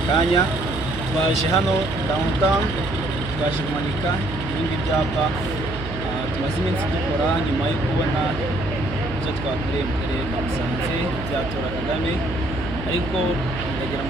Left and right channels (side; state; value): right; noise; hum, 9 dB below the sound